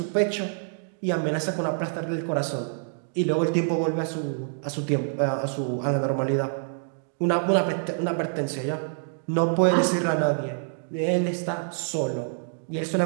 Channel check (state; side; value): silent; left; digital silence